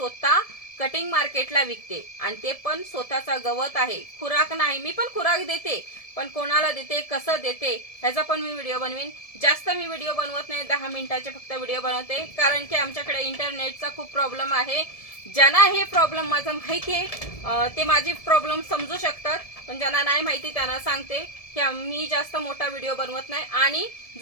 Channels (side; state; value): right; late; 1.7 ms